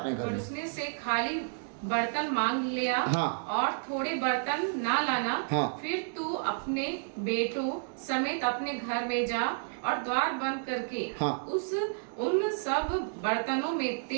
घर में, पड़ोसियों से खाली बर्तन मांग लिया। हाँ। और थोड़े बर्तन ना लाना। हाँ। फिर तू अपने बेटों समेत अपने घर में जा और द्वार बंद करके हाँ। उन सब बर्तनों में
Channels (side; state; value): left; silent; digital silence